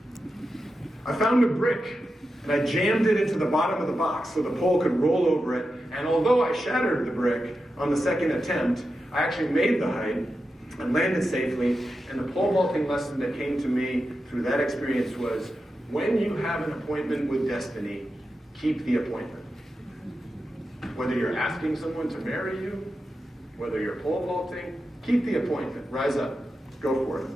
I found a brick and I jammed it into the bottom of the box so the pole could roll over it. And although I shattered the brick on the second attempt, I actually made the height and landed safely. And the pole vaulting lesson that came to me through that experience was, when you have an appointment with destiny, keep the appointment. Whether you're asking someone to marry you, whether you're pole vaulting, keep the appointment. Rise up. Go for it.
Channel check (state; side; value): normal; both; correlation 0.90